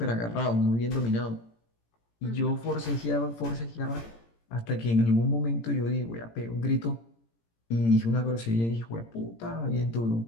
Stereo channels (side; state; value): right; late; 17 ms